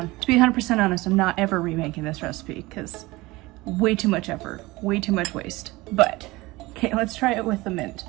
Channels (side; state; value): left; quieter; 21.0 dB